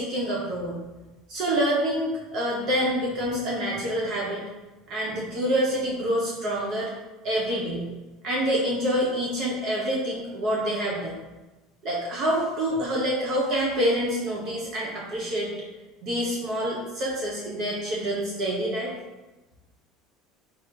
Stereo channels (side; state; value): both; normal; correlation 0.33